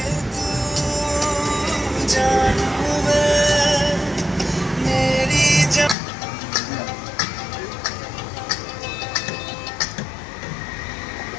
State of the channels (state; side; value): drops out; right; at 6.0 s